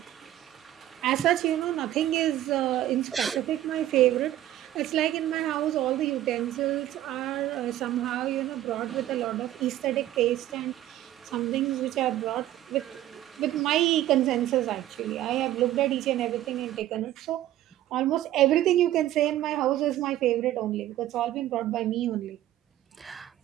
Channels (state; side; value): quieter; left; 13.5 dB